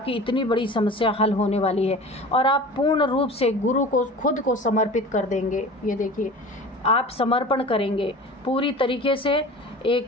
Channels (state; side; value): normal; both; correlation 0.38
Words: इतनी बड़ी समस्या हल होने वाली है और आप पूर्ण रूप से गुरु को खुद को समर्पित कर देंगे। ये देखिए, आप समर्पण करेंगे पूरी तरीके से,